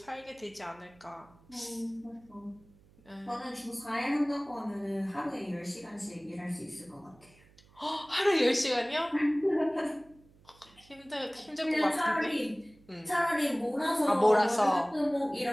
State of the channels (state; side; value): noise; right; hum, 28 dB below the sound